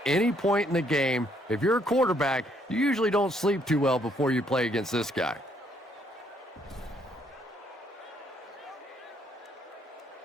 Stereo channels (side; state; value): both; normal; correlation 0.69